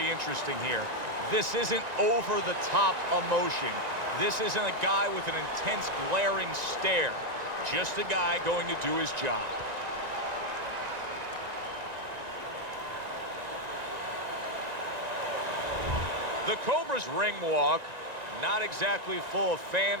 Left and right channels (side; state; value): left; late; 1.9 ms